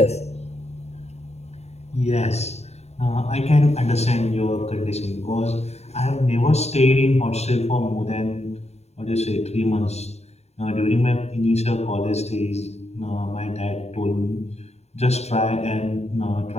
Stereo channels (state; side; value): late; right; 0.31 ms